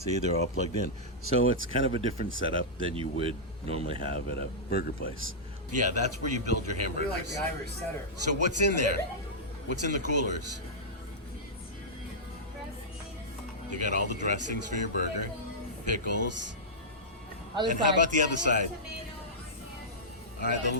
they're all plugged in. So it's kind of a different setup than you would normally have at a burger place. Yeah, that's where you build your hamburgers. We're like the Irish setter. So what's in there? What's in the coolers? You got all the dressings for your burger, pickles. And how about the other side? All right,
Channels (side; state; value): both; normal; correlation -0.12